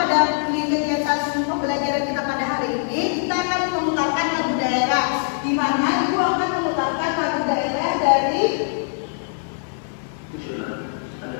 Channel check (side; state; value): right; silent; digital silence